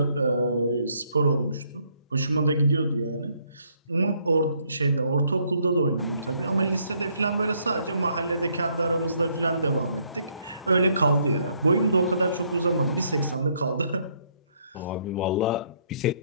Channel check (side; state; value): both; inverted; correlation -0.69